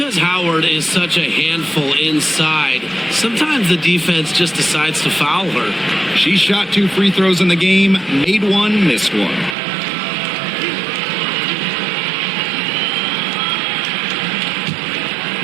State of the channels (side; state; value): left; drops out; at 9.6 s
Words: Howard is such a handful inside, sometimes the defense just decides to foul her. She shot 2 free throws in the game, made one, missed one.